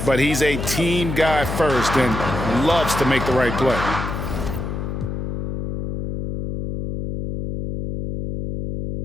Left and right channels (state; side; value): noise; left; hum, 4 dB below the sound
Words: but he's a team guy first and loves to make the right play.